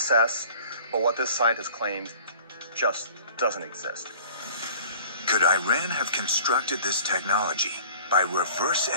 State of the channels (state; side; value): inverted; both; correlation -0.48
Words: but what this scientist claims just doesn't exist. Could Iran have constructed this technology by reverse